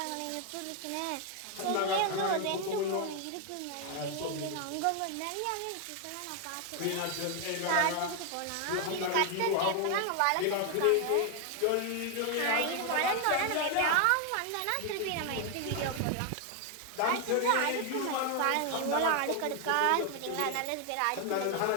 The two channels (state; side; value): different; both; correlation 0.01